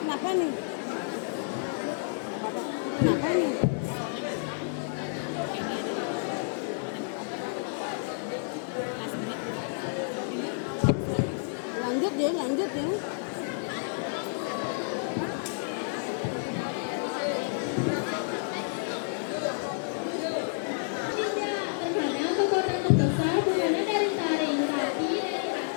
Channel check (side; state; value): right; silent; 58 dB below the other